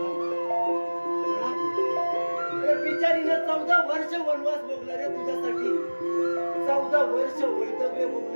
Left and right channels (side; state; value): both; inverted; correlation -1.00